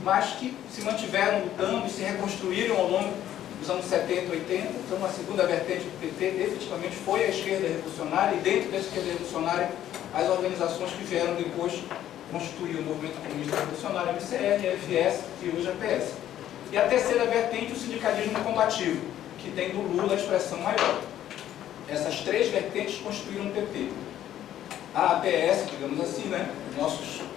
mas que se mantiveram lutando e se reconstruíram ao longo dos anos 70 e 80. Então, a segunda vertente do PT efetivamente foi a esquerda revolucionária, e dentro dessa esquerda revolucionária, as organizações que vieram depois constituir o movimento comunista revolucionário, MCR, FS e hoje a PS. E a terceira vertente, o sindicalismo combativo, que tem do Lula a expressão maior. Essas 3 vertentes constituíram o PT. A APS, digamos assim, né? Nossos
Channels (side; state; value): right; quieter; 11.8 dB